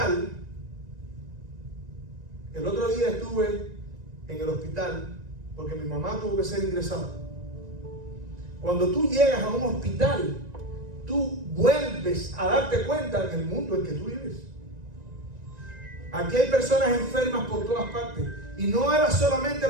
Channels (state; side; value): late; left; 1.9 ms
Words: el otro día estuve en el hospital porque mi mamá tuvo que ser ingresada. Cuando tú llegas a un hospital, tú vuelves a darte cuenta del mundo en que tú vives. Aquí hay personas enfermas por todas partes. Y no era solamente